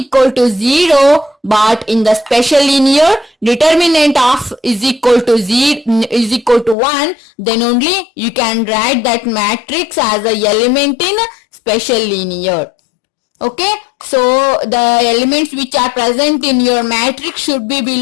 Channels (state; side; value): drops out; right; at 6.8 s